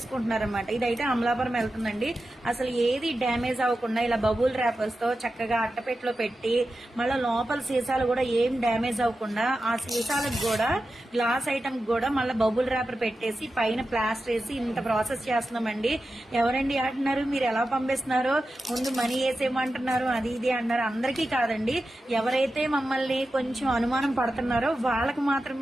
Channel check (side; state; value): both; normal; correlation 0.92